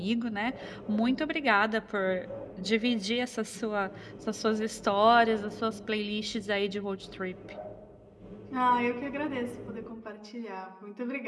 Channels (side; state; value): both; identical; correlation 1.00